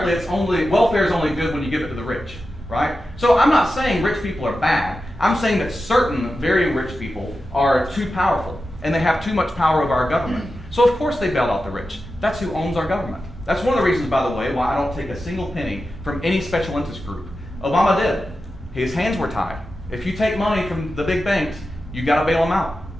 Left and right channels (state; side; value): normal; both; correlation 0.91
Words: welfare is only good when you give it to the rich, right? So I'm not saying rich people are bad. I'm saying that certain very rich people are too powerful and they have too much power over our government. So of course they bail out the rich. That's who owns our government. That's one of the reasons, by the way, why I don't take a single penny from any special interest group. Obama did. His hands were tied. If you take money from the big banks, you got to bail them out.